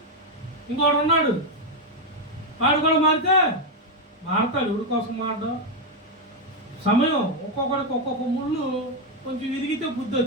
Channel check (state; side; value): normal; both; correlation 0.04